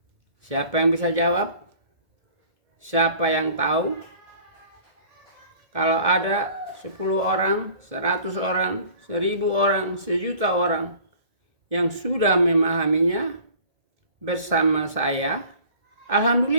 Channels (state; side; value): late; left; 1.7 ms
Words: siapa yang bisa jawab? Siapa yang tahu? Kalau ada 10 orang, 100 orang, 1000 orang, 1.000.000 orang yang sudah memahaminya bersama saya,